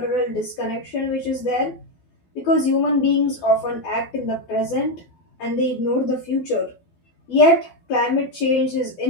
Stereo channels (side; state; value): right; late; 12 ms